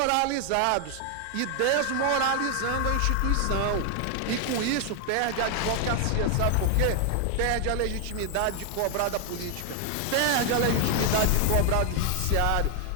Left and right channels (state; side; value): different; both; correlation 0.00